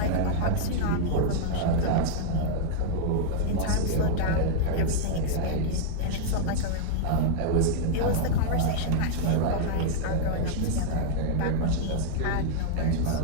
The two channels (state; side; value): different; both; correlation -0.01